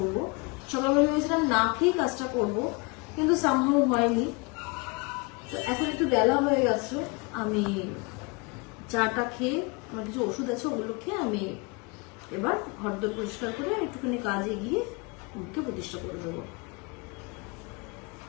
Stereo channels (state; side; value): quieter; right; 29.4 dB